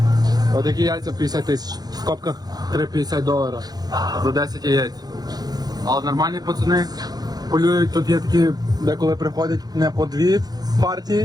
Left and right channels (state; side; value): late; left; 0.19 ms